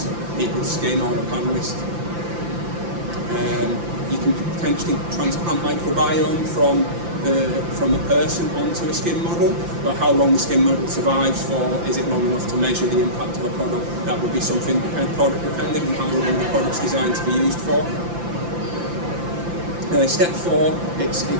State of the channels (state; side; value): late; left; 5.8 ms